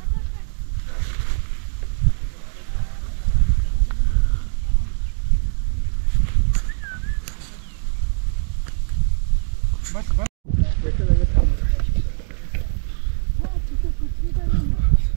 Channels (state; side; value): silent; left; digital silence